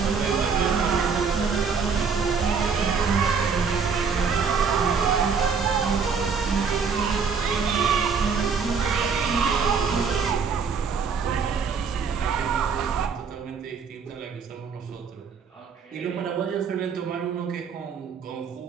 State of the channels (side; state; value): left; quieter; 5.7 dB